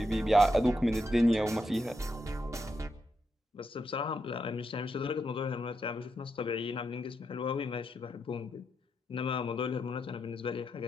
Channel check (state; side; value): normal; both; correlation 0.83